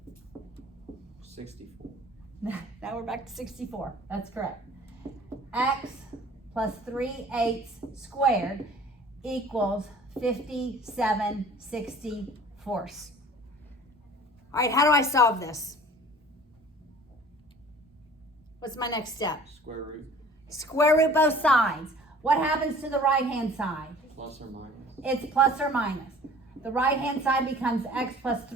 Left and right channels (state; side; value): normal; both; correlation 0.48